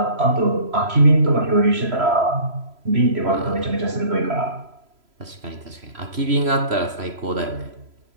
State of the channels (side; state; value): left; late; 3.0 ms